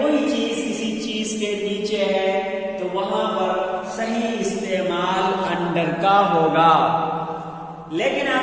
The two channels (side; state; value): both; identical; correlation 1.00